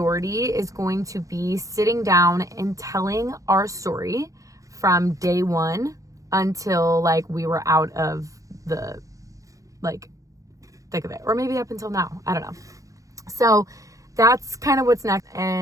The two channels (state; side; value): late; left; 0.16 ms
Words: is going to be sitting down and telling our story from day one until like we were out of the like thick of it, or maybe up until now, I don't know. So that's kind of what's next,